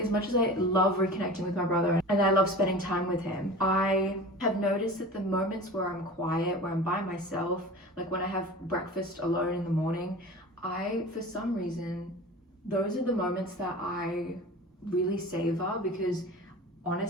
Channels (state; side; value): normal; both; correlation 0.36